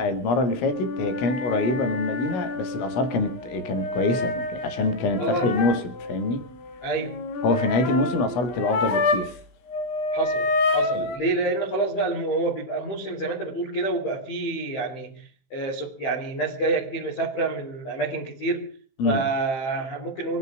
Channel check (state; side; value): late; right; 17 ms